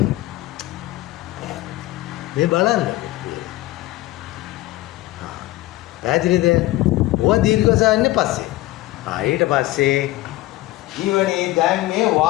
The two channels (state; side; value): quieter; right; 17.5 dB